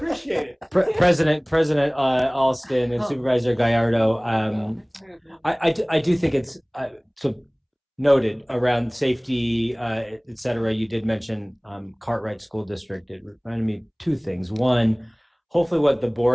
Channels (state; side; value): identical; both; correlation 1.00